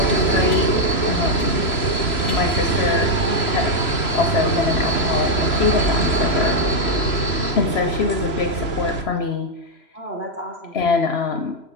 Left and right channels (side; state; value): right; late; 3.0 ms